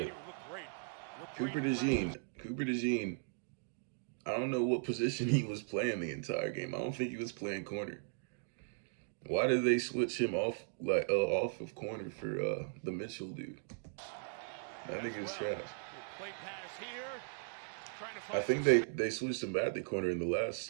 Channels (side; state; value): left; silent; digital silence